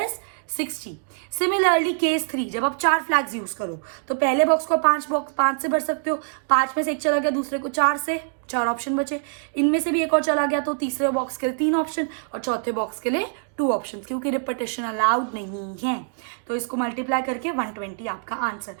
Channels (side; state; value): left; silent; 62 dB below the other